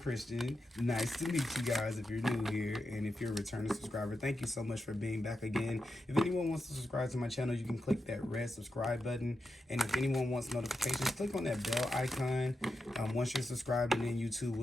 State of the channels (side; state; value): both; normal; correlation 0.88